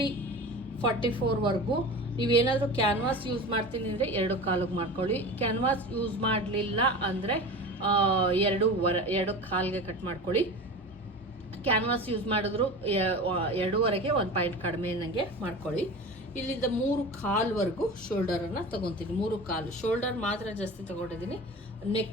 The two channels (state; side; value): normal; both; correlation 0.33